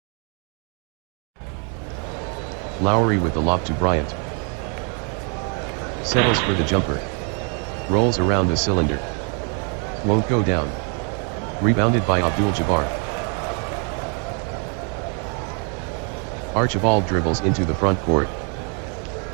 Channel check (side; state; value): left; quieter; 39.0 dB